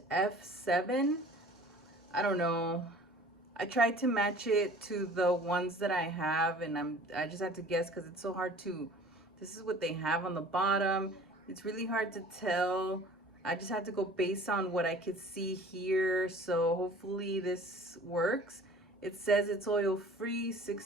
F7. I don't know. I tried to match it to the ones that I have, and I just had to guess because it's so hard to. This is what they have on the bottom. It's really hard to tell. I just had to go based on what I could see here, so hopefully this works. It says it's oil free,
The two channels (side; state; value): both; normal; correlation 0.47